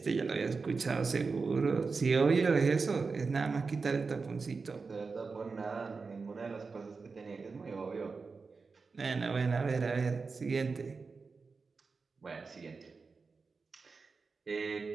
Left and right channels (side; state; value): left; quieter; 4.5 dB